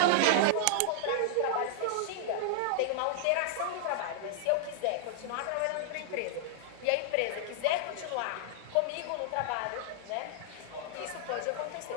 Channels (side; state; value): both; different; correlation -0.01